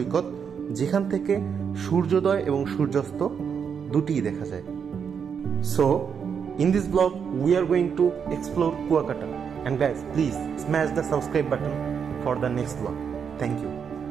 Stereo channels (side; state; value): left; quieter; 6.9 dB